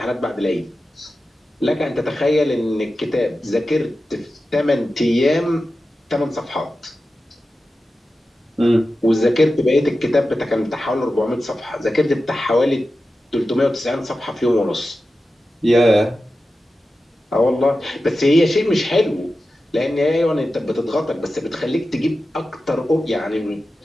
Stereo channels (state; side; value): normal; both; correlation 0.93